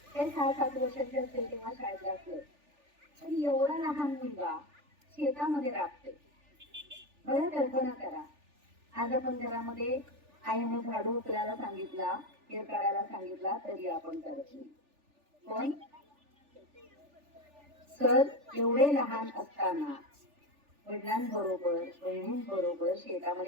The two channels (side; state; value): left; late; 3.4 ms